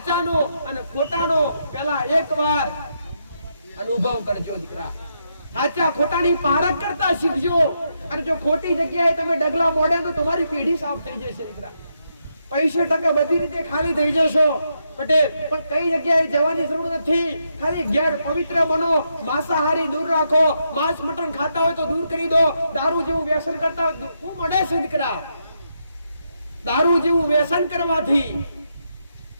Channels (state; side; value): inverted; both; correlation -0.81